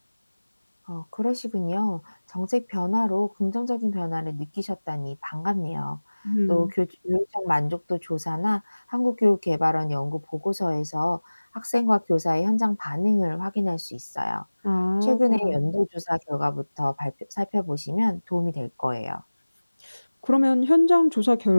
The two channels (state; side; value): inverted; both; correlation -1.00